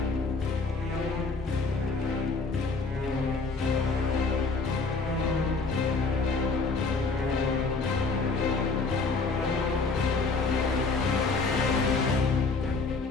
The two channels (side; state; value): right; quieter; 4.1 dB